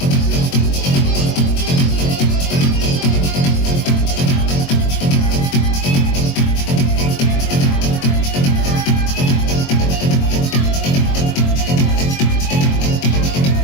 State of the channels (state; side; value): late; right; 22 ms